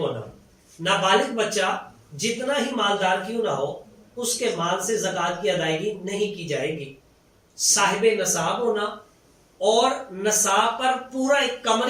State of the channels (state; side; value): identical; both; correlation 1.00